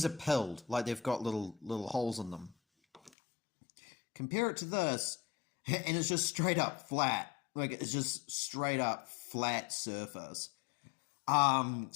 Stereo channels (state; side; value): drops out; right; at 3.1 s